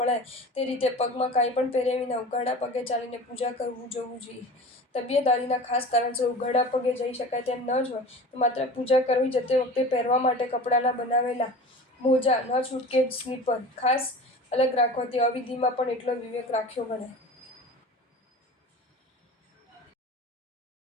તે રીતે પગમાં કાંઈ પણ પહેર્યા વિના ઉઘાડા પગે ચાલીને પૂજા કરવું જવું જોઈએ. તબિયત આદિના ખાસ કારણસર ઉઘાડા પગે જઈ શકાય તેમ ન જ હોય તો માત્ર પૂજા કરવી જતી વખતે પહેરવા માટે કપડાના બનાવેલા મોજા, ન છૂટકે સ્લીપર ખાસ અલગ રાખવાથી અવિધિમાં પણ એટલો વિવેક રાખ્યો ગણાય.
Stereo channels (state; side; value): normal; both; correlation 0.37